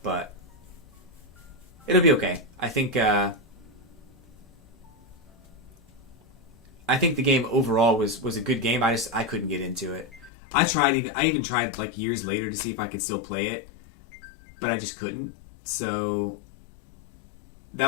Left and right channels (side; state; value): right; drops out; at 10.3 s